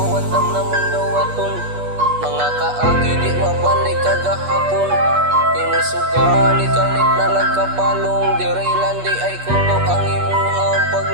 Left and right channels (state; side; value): late; left; 8.3 ms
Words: wandam na mong gawaton. Mga kaagi di mabalik kagahapon. Inusugan ikalit na lagkapalong. Dirilan di ay kuto ang imuhang